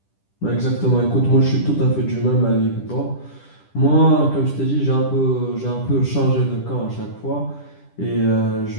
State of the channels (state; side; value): late; right; 10 ms